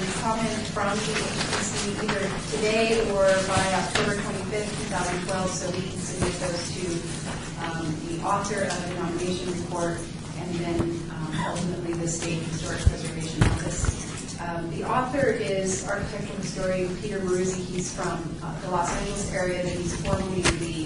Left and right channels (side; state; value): both; identical; correlation 1.00